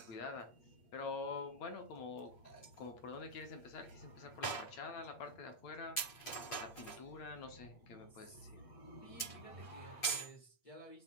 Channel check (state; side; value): late; right; 8.6 ms